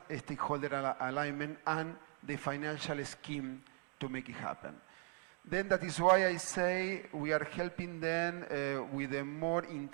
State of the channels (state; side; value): quieter; left; 36.1 dB